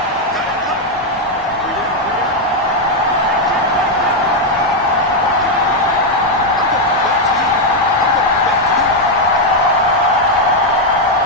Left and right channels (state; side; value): normal; both; correlation 0.01